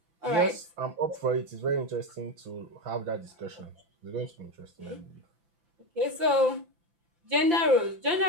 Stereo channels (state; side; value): late; left; 5.8 ms